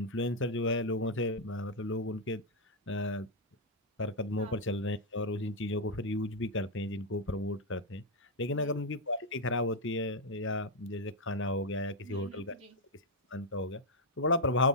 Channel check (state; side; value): normal; both; correlation -0.01